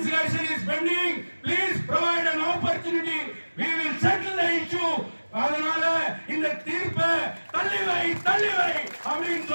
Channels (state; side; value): inverted; both; correlation -1.00